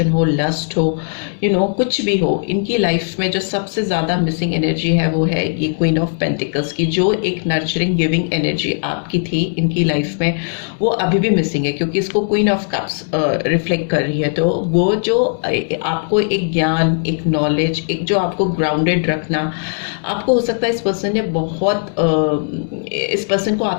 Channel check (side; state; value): right; silent; digital silence